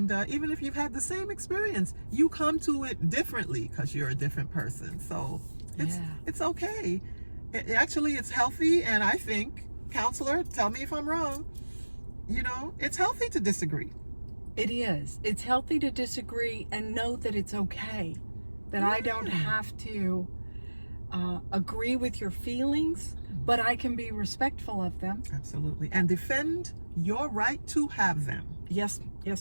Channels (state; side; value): inverted; both; correlation -1.00